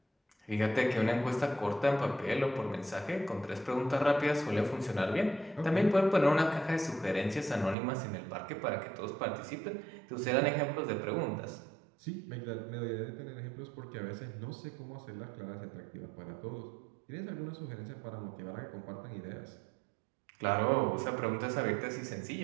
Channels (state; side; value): drops out; left; at 7.8 s